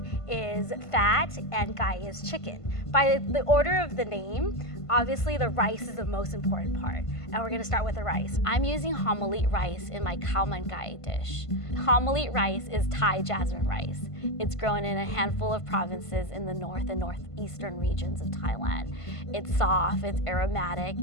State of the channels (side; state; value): right; late; 1.5 ms